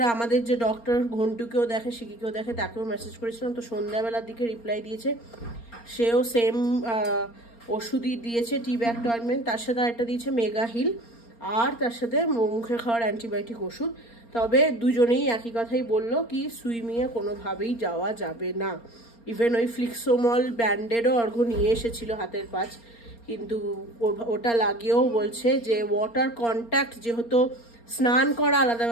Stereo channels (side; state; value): right; late; 4.3 ms